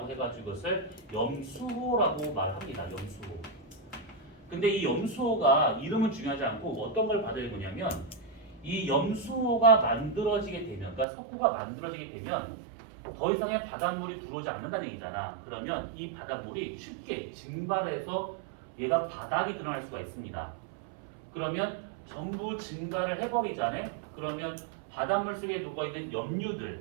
해가지고 그것을 염수호라고 말합니다. 염수호. 근데 이 염수호가 이름은 중요하지 않고 어떤 걸 받아야 되냐면 이 염수호가 만들어지게 되면, 그러니까 석호가 만들어지게 되면 더 이상의 바닷물이 들어오지 않는다는 얘기잖아. 그러면 이 바닷물이 쉽게 증발해서 얘가 바닥이 드러날 수가 있습니다. 그러면 전부 증발을 해버리잖아요. 그러면 바닷물 속에 녹아있는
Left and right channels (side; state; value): left; drops out; at 11.1 s